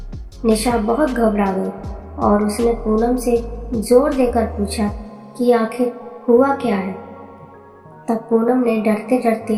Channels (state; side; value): identical; both; correlation 1.00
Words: निशा बहुत घबरा गई और उसने पूनम से जोर देकर पूछा कि आखिर हुआ क्या है। तब पूनम ने डरते